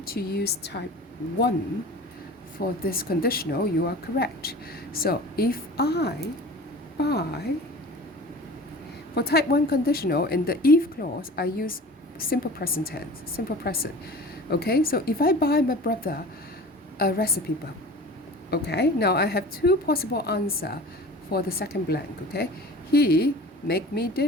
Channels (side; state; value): both; normal; correlation 0.39